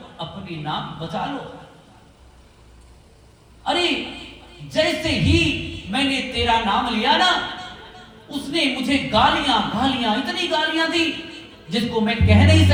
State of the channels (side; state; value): both; identical; correlation 1.00